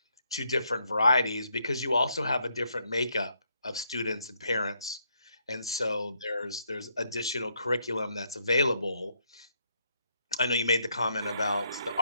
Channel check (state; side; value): inverted; both; correlation -0.75